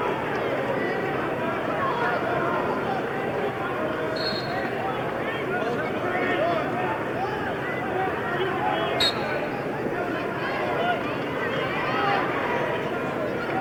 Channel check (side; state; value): both; identical; correlation 1.00